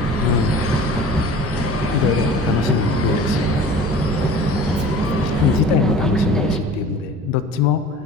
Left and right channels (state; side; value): normal; both; correlation 0.42